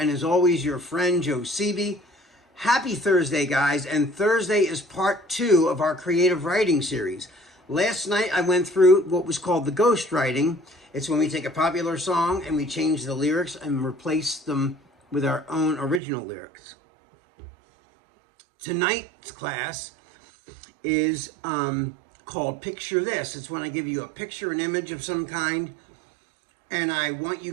as always, your friend, Joe Seavey. Happy Thursday, guys, and Thursday is part 2 of our creative writing series. Last night, I went through what was called the ghost writing. It's when we take a popular song and we change the lyrics and replace them with our own original lyrics. Tonight's class is called Picture This. It's when I give you a picture, an image of some kind, and I want you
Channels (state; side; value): drops out; left; at 16.0 s